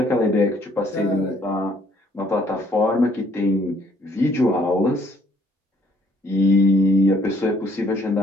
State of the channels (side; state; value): both; normal; correlation 0.63